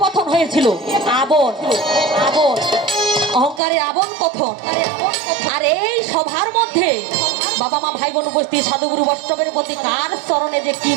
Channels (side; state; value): left; drops out; at 3.6 s